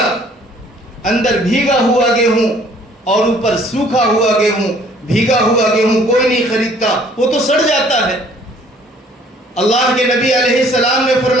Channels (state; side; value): normal; both; correlation 0.58